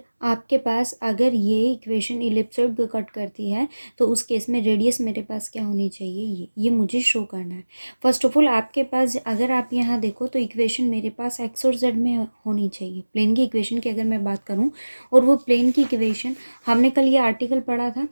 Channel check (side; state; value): both; inverted; correlation -1.00